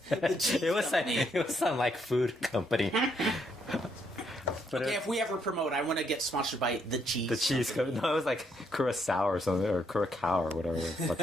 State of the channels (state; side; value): normal; both; correlation 0.74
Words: It was some like food company. But if we ever promote, I want to get sponsored by the Cheese. The Cheese company. No, it was like Curacao or something, or Curacao or whatever